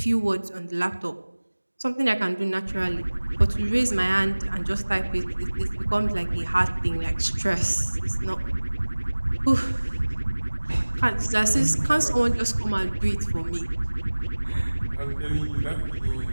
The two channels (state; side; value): inverted; both; correlation -1.00